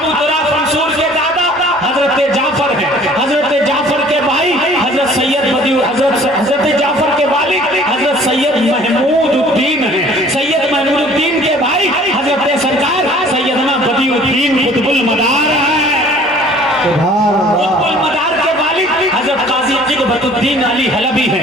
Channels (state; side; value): normal; both; correlation 0.52